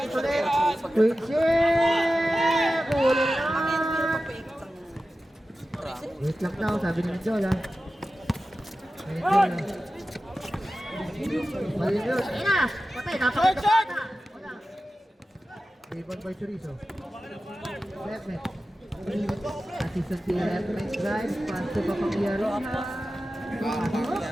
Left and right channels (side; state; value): both; normal; correlation 0.94